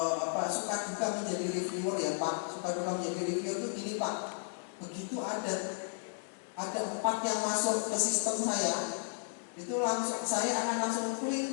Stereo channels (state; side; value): silent; right; digital silence